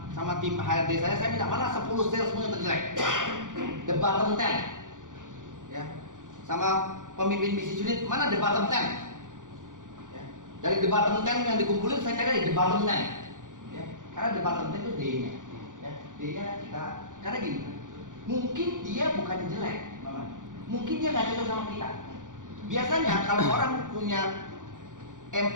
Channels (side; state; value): left; late; 0.88 ms